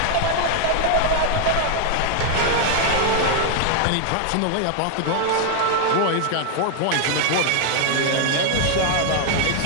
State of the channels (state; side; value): different; both; correlation 0.00